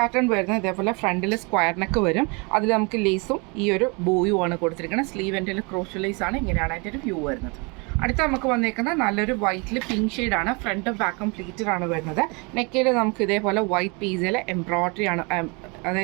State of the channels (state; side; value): quieter; left; 30.6 dB